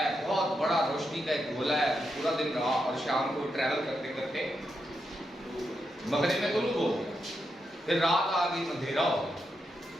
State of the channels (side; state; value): both; normal; correlation 0.84